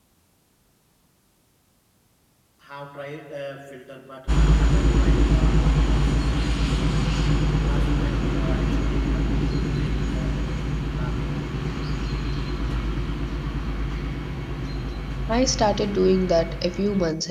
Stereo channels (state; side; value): identical; both; correlation 1.00